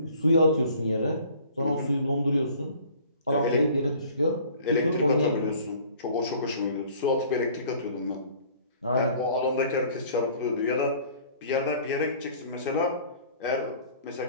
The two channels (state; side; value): inverted; both; correlation -0.51